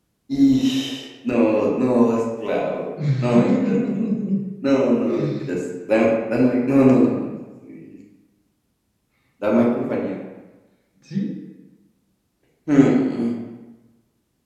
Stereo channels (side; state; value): both; identical; correlation 1.00